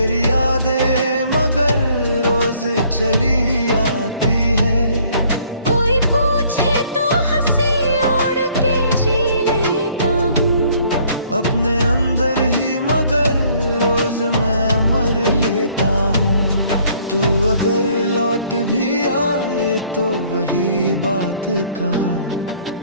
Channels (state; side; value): inverted; both; correlation -0.61